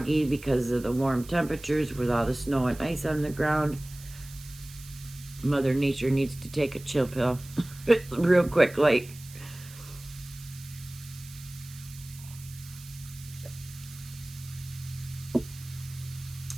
because of the warm temperatures with all the snow and ice on the ground. Mother Nature needs to take a chill pill real quick, like.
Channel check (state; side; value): noise; right; hiss, 18 dB below the sound